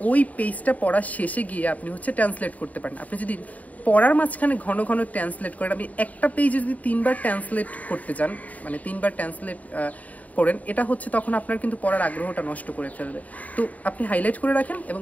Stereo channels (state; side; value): late; right; 0.072 ms